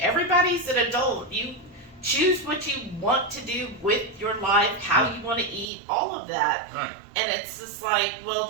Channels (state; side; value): drops out; left; at 5.7 s